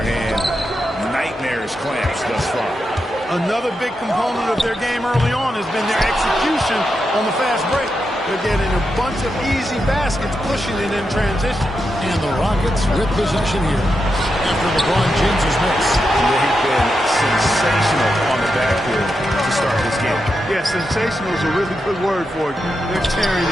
hand. Nightmarish clamps thus far. Another big component of their game early on has been their execution on the fast break. They're getting a bunch of easy baskets, pushing it in transition. And the Rockets with possession here after LeBron James's miss. They've been sensational on the backfield to start this game. Yeah, sensational is a really good word for it. They're tearing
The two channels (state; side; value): normal; both; correlation 0.86